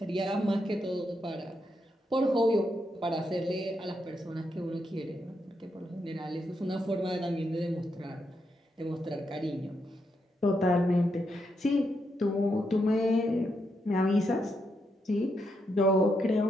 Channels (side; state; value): both; normal; correlation 0.81